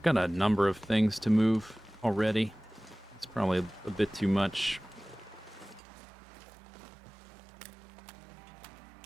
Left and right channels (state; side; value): drops out; left; at 5.8 s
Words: got a number of things to move already. It's probably a bit too much.